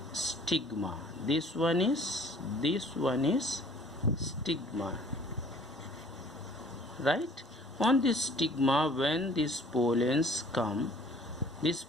stigma. This one is stigma, right? On this stigma, when these pollens come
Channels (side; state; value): both; normal; correlation 0.54